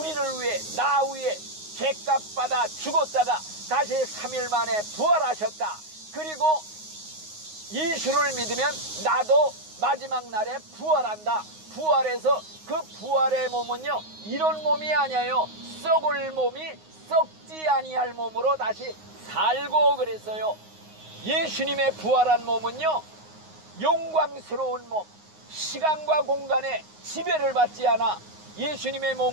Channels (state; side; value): late; left; 9.6 ms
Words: 위해, 나 위해 죄값 받아 죽었다가 다시 3일 만에 부활하셨다. 그리고 예수를 믿으면 나도 마지막 날에 부활한다. 부활해서 그 부활의 몸은요, 이런 몸이 아니에요. 썩을 몸이 썩지 아니할 몸으로 다시 살고 그랬어요. 예수님의 부활한 몸은요, 영광스러운 몸, 시간과 공간에 지배를 받지 않아. 예수님의